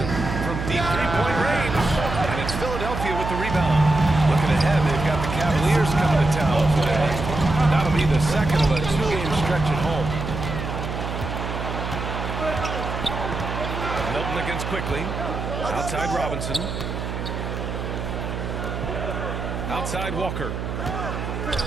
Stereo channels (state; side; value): noise; right; hum, 5 dB below the sound